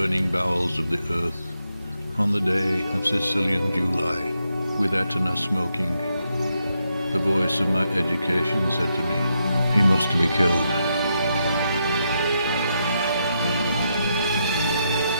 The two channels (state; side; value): inverted; both; correlation -0.81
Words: bowels of the earth, on the day of Sicilian July, with Etna smoking, the voice of my education said to me, he must be killed.